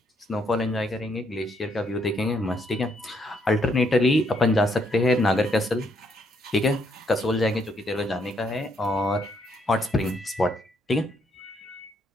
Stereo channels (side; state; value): both; normal; correlation 0.73